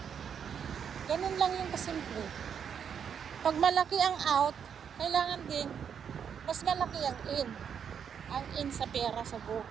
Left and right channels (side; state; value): left; quieter; 7.7 dB